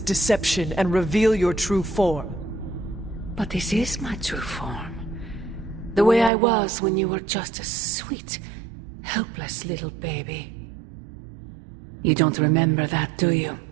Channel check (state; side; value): drops out; left; at 6.3 s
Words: deception and reveal your true form. But this is my true form. The way I was when you were just a sweet, helpless little baby. You don't remember that, do you?